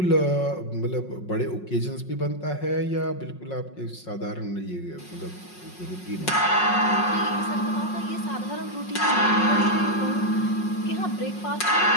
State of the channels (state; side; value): late; right; 5.5 ms